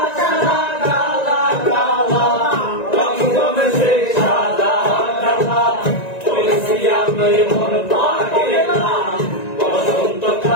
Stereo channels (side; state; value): right; late; 1.9 ms